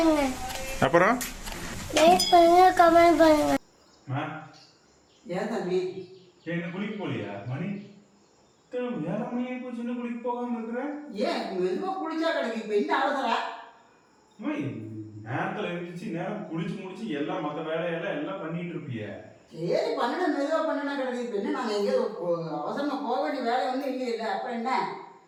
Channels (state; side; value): identical; both; correlation 1.00